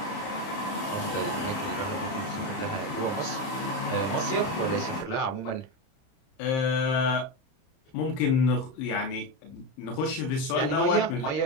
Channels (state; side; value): late; right; 30 ms